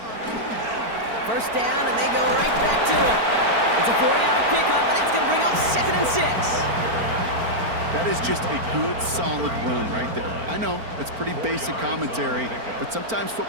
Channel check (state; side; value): late; left; 4.4 ms